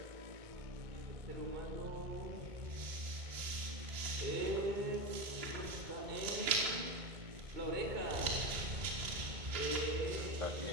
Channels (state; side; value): late; left; 2.2 ms